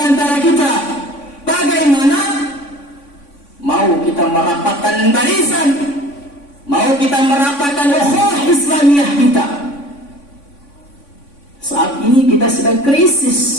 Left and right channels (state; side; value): late; right; 3.5 ms